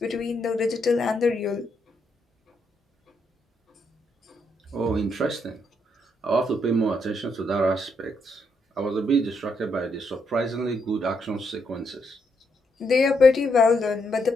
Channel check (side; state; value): both; normal; correlation 0.77